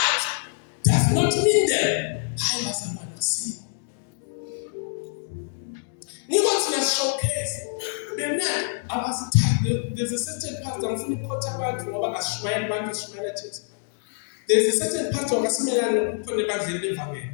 does not mean them, I bazalwane siko. Nikothi na showcase. There's a certain pastor ngifuna ukukhotha abantu ngoba kasishmayela abantu sishmayela Jesu. There's a certain pastor ngasimelana ukukhona ebandleni levangeli.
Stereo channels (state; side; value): silent; right; digital silence